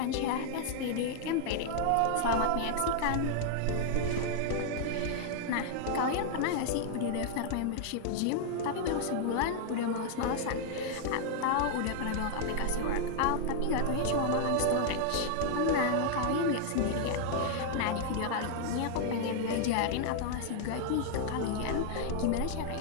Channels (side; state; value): both; different; correlation 0.00